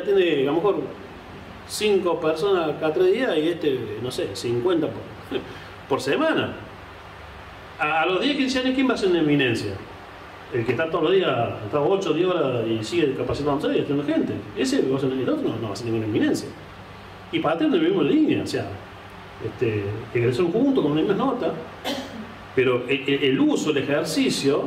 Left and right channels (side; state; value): both; identical; correlation 1.00